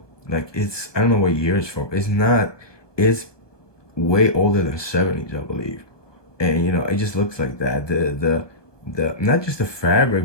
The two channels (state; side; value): late; right; 1.2 ms